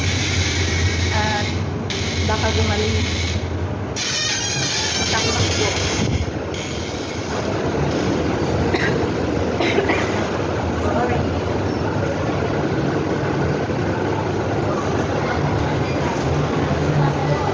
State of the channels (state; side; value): identical; both; correlation 1.00